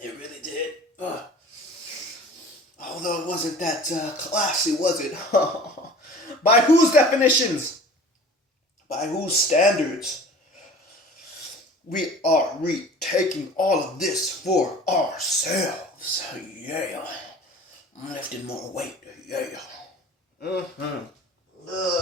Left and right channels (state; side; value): normal; both; correlation 0.43